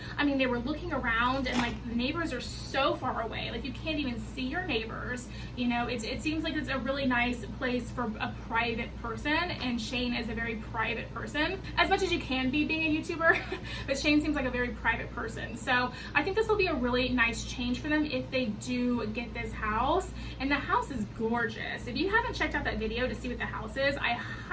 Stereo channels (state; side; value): identical; both; correlation 1.00